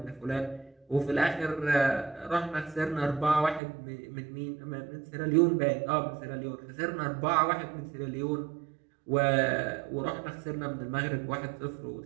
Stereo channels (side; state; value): left; drops out; at 3.6 s